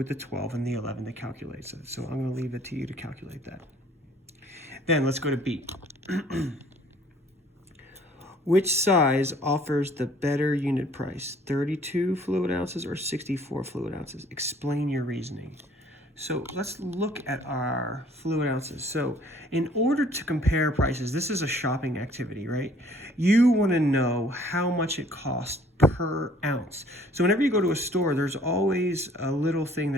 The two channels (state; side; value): normal; both; correlation 0.57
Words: the 12 and the 11 that calculates it? So I'm going to leave it to you to calculate that. Then let's go to B. Which size offers the better unit price? 32 fluid ounces or 64 fluid ounces? Explain your reasoning. So let's look at our fluid ounces. So in order to compare prices, this is a shopping activity, right? You want to know how much it costs per ounce. So whenever you go to a store, there's always a little thing